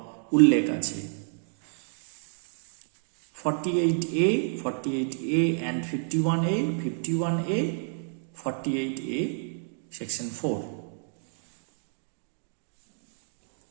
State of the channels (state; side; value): silent; left; digital silence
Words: উল্লেখ আছে? 48A, 48A and 51A, 51A, 48A, section 4.